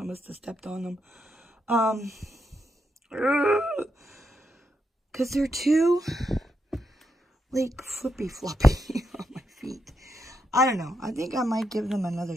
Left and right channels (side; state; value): both; normal; correlation 0.82